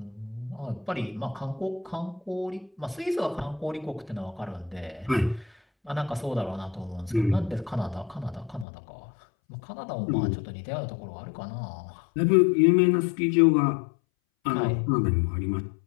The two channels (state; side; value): drops out; right; at 8.7 s